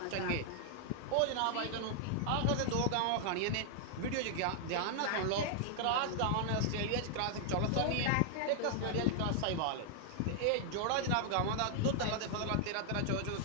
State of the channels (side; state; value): both; different; correlation 0.00